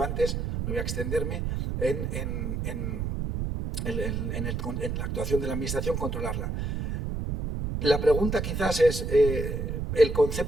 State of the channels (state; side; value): noise; right; rumble, 2 dB below the sound